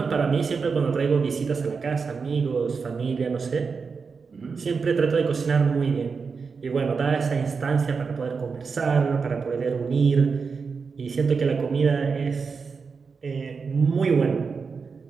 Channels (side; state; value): left; quieter; 5.2 dB